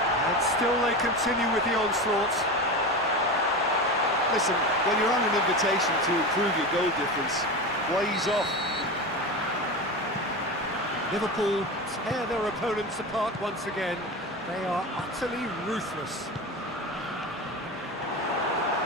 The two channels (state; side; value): normal; both; correlation 0.24